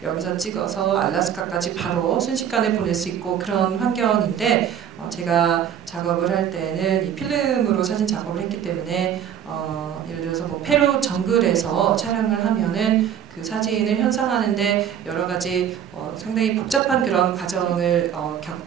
여기서 찍어서 알래스카까지 바로 순식간에 보낼 수 있고 그런 환경인데 제가 작업을 할 때는 이 필름으로 사진 작업을 했기 때문에 예를 들어서 뭐 페루 정글에서 촬영을 하면은 그 사진을 현상하는데 여러 가지 상당히 복잡한 그런 과정을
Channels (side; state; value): left; quieter; 9.2 dB